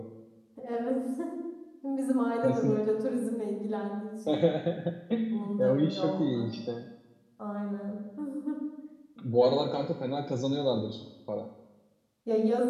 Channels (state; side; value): identical; both; correlation 1.00